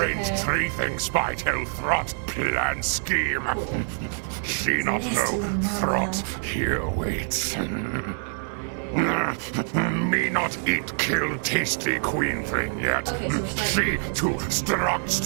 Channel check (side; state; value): left; silent; 61 dB below the other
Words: okay? three things by tell Throt plan scheme. She not nasty know one, Throt here waits. Me not eat kill tasty queen thing yet. Okay, so we're starting. She too